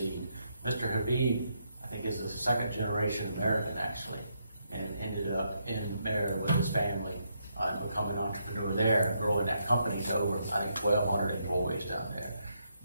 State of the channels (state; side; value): inverted; both; correlation -0.78